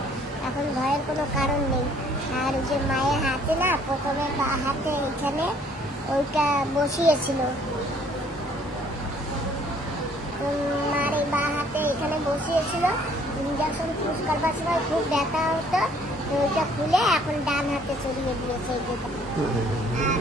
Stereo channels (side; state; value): both; normal; correlation 0.60